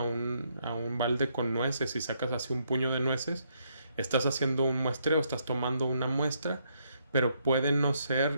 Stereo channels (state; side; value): inverted; both; correlation -0.74